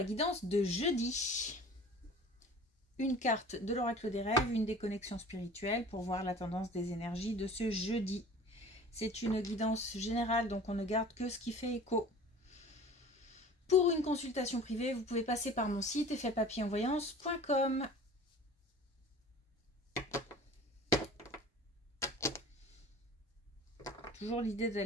guidance de jeudi. Une carte de l'oracle des rêves, une déconnexion spirituelle pour voir la tendance des énergies de ce jeudi. C'est une guidance générale, donc on ne garde que ce qui fait écho. Pour une consultation privée, vous pouvez passer par mon site effetpapillonvoyance.com. Toujours l'idée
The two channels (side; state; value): both; normal; correlation 0.43